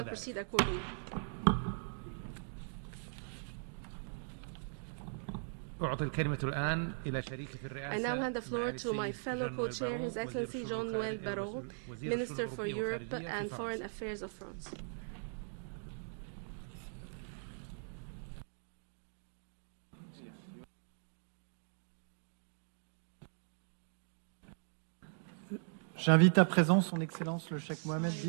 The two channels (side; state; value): left; silent; digital silence